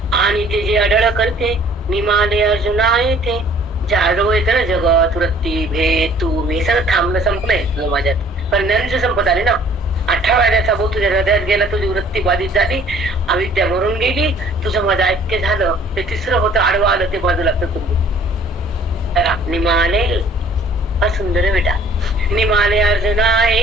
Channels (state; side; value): normal; both; correlation 0.55